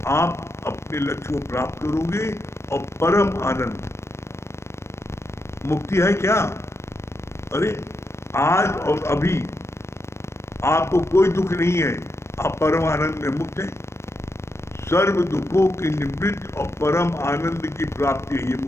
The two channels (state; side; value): late; right; 0.13 ms